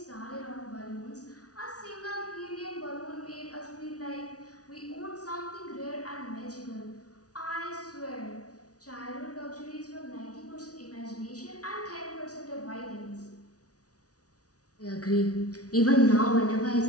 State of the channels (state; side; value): late; right; 0.68 ms